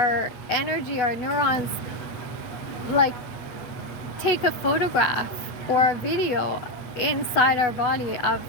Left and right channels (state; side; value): late; right; 8.2 ms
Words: energy, our neurons, like, take a photograph or a video inside our body of